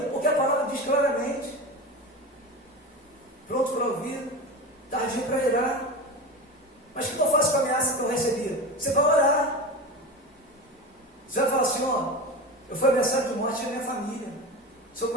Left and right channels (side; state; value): both; normal; correlation 0.26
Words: Porque a palavra diz claramente: pronto para ouvir, tardio para irar. Mas o que eu faço com a ameaça que eu recebi? Você vai orar. Você vai falar: Senhor, eu fui ameaçado de morte da minha família. O Senhor